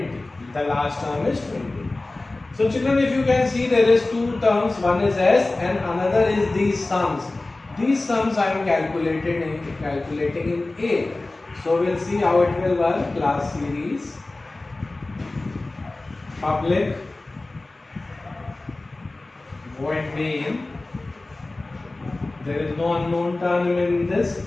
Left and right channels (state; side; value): quieter; right; 3.0 dB